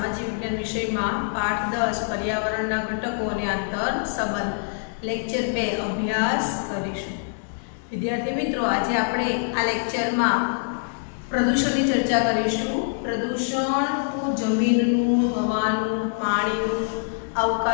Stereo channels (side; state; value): right; silent; 59 dB below the other